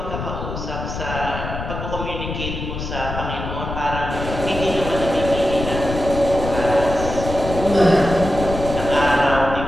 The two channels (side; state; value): left; noise; rumble, 6 dB below the sound